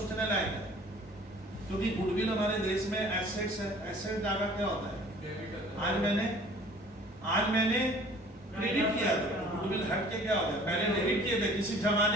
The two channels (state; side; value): normal; both; correlation 0.50